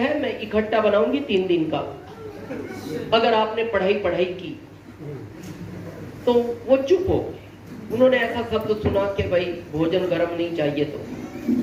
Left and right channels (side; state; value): both; identical; correlation 1.00